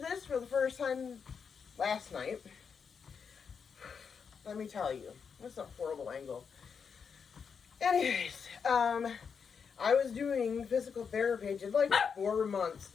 this for the first time last night. Let me tell you, that's a horrible angle. Anyways, I was doing physical therapy. I did like 4 months.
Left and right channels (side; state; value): right; quieter; 6.3 dB